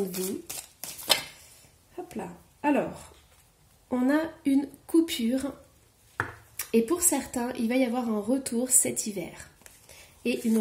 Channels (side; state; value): both; identical; correlation 1.00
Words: vous. Hop là. Alors on a une coupure. Et pour certains, il va y avoir un retour cet hiver et une